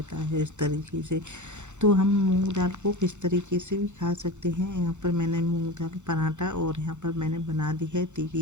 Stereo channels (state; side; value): late; left; 0.84 ms